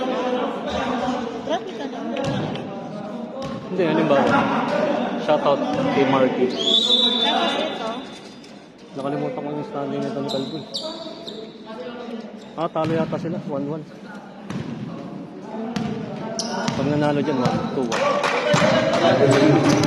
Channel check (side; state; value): both; identical; correlation 1.00